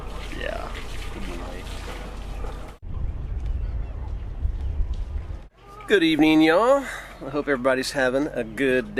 Yeah. Good evening, y'all. I hope everybody's having a good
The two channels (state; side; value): identical; both; correlation 1.00